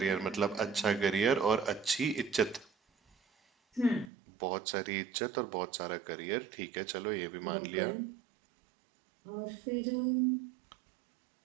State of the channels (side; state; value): left; drops out; at 4.1 s